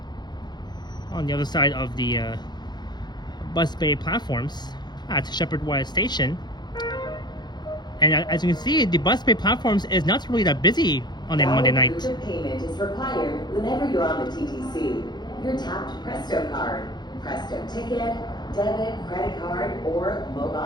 on the other side of the bus bay platforms at Sheppard West Station. And as you can see, the bus bay platforms is not really that busy on a Monday night. Proof of payment is required whenever you're on the TTC. Your tapped Presto card, Presto ticket, debit, credit card, or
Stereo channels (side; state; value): right; late; 0.21 ms